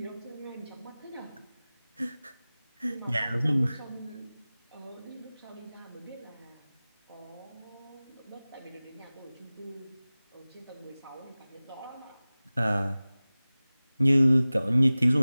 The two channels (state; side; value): inverted; both; correlation -0.98